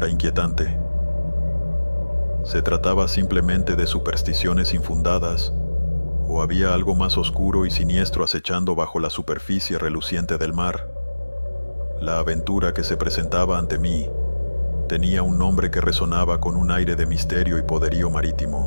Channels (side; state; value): both; inverted; correlation -1.00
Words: inquietante? ¿Se trataba simplemente de supersticiones infundadas, o había algo más oscuro y siniestro acechando bajo la superficie reluciente del mar? La aventura que se presentaba ante mí tenía un nombre que resonaba con un aire de misterio y poderío